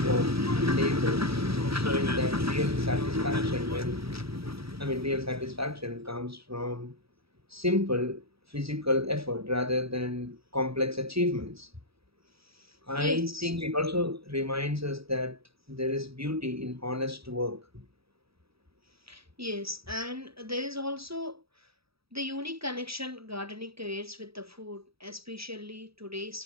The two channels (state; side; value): late; left; 0.77 ms